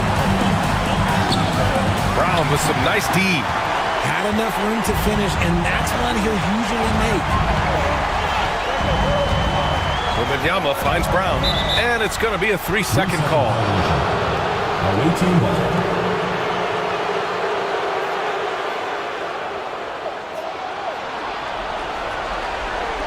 Brown with some nice D. Had enough room to finish, and that's one he'll usually make. Wembanyama finds Brown, and it's going to be a 3-second call.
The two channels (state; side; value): identical; both; correlation 1.00